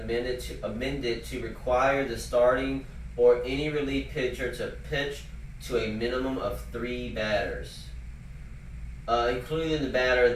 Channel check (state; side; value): identical; both; correlation 1.00